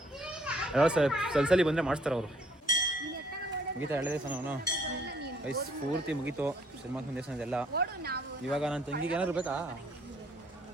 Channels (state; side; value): normal; both; correlation 0.62